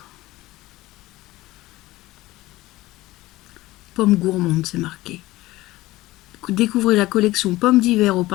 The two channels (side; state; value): right; quieter; 18.1 dB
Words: Pomme gourmande, c'est marqué. Découvrez la collection pommes d'hiver au